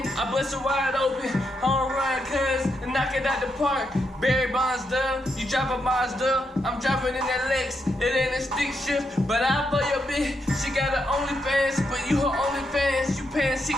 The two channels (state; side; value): normal; both; correlation 0.81